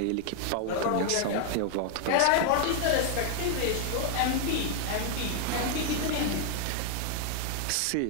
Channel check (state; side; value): different; both; correlation 0.00